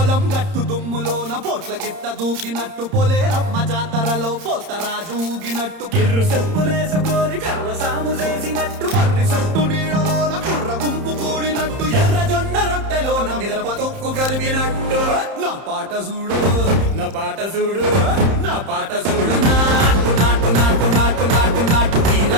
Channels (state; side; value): late; left; 31 ms